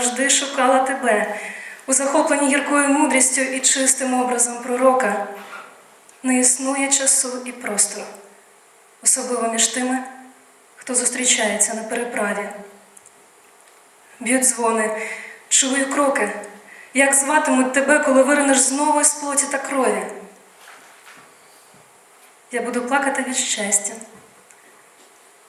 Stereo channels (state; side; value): identical; both; correlation 1.00